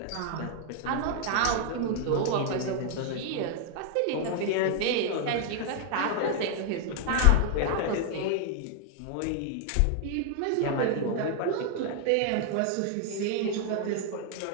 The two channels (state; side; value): different; both; correlation 0.00